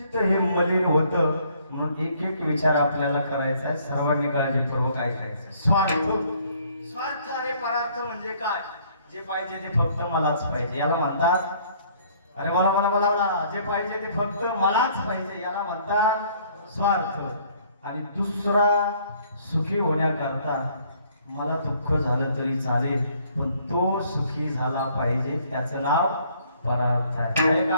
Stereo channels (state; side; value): inverted; both; correlation -0.61